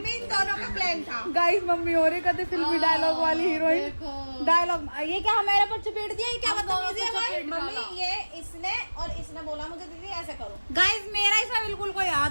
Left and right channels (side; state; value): both; inverted; correlation -1.00